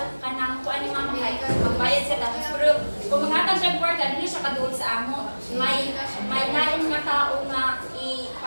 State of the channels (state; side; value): inverted; both; correlation -1.00